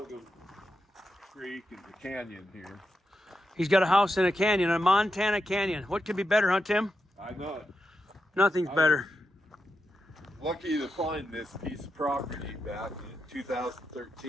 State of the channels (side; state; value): both; normal; correlation 0.86